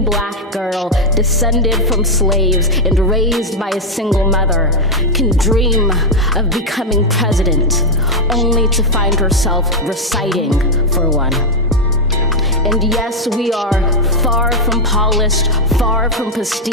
girl descended from slaves and raised by a single mother can dream of becoming president, only to find herself reciting for one. And yes, we are far from polished, far from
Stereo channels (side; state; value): both; normal; correlation 0.01